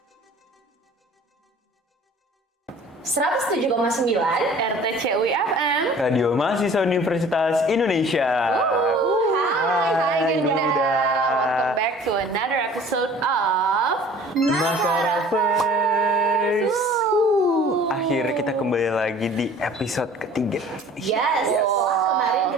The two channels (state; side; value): normal; both; correlation 0.48